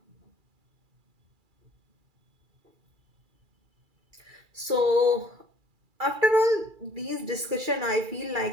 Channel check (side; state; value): left; late; 2.4 ms